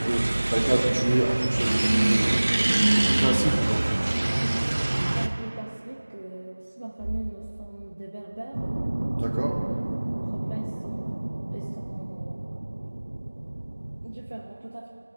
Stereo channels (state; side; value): inverted; both; correlation -1.00